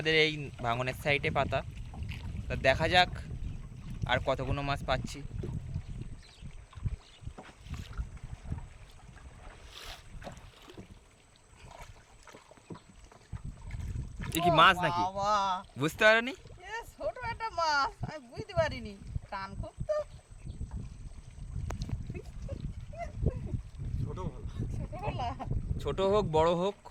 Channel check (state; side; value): identical; both; correlation 1.00